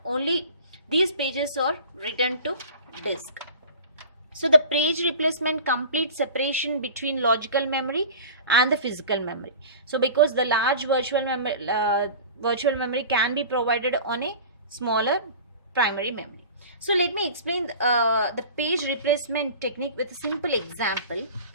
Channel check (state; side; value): inverted; both; correlation -0.38